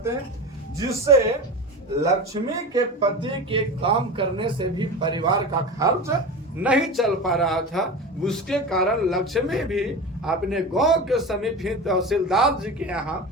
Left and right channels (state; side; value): normal; both; correlation 0.27